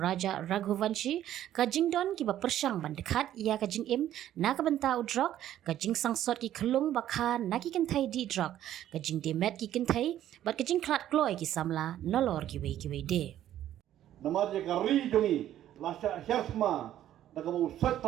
Raghuvanshi kajing don kiba persang bandekat ia kajing im na kabenta udrok kajing sangsot ki kelung bakha na ki kentai di drok kajing demet ki kentai bat kajing klat kloy ki samla nolor kiway de Nama dia kari jongi lasya hyasma dakamu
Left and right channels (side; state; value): left; quieter; 12.0 dB